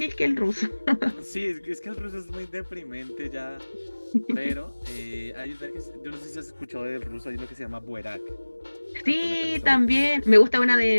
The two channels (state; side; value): inverted; both; correlation -1.00